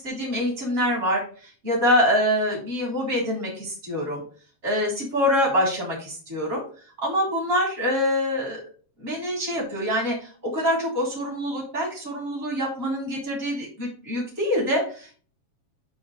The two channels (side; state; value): left; late; 7.3 ms